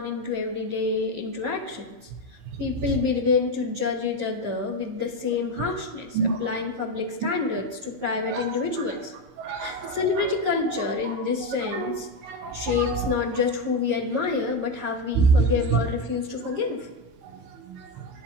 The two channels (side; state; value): left; late; 15 ms